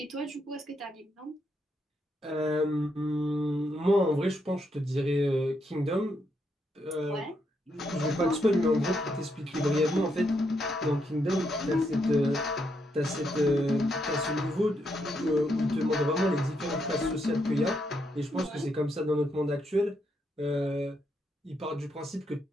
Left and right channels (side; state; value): both; normal; correlation 0.79